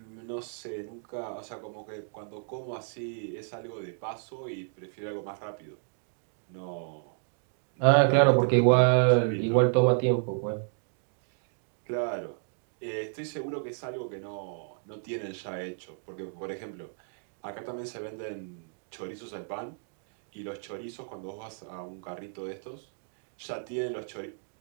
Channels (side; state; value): left; silent; digital silence